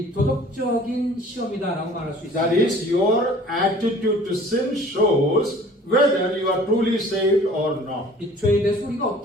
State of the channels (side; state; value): both; normal; correlation 0.49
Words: 도덕적인 시험이다라고 말할 수 That 있습니다. is, your attitude to sin shows whether you are truly saved or not. 이 죄에 대해서 우리가